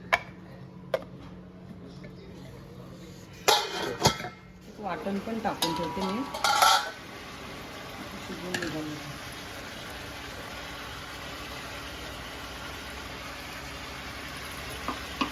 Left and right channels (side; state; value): both; identical; correlation 1.00